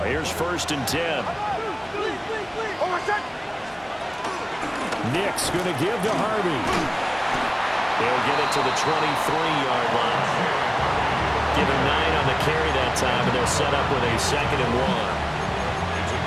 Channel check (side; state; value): both; identical; correlation 1.00